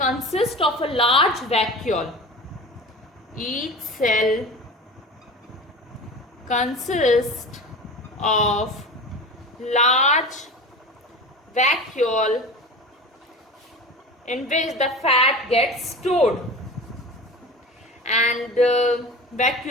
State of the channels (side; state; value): both; normal; correlation 0.33